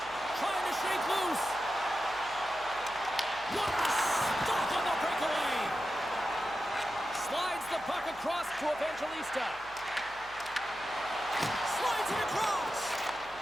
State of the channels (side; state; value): right; noise; hum, 23 dB below the sound